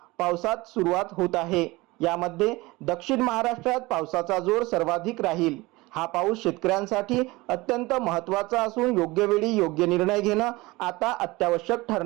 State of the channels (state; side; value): quieter; left; 21.6 dB